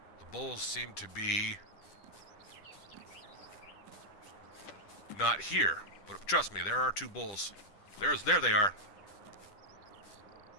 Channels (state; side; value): late; right; 10 ms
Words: The bulls seem to be not here, but trust me, there are 2 bulls. There they are.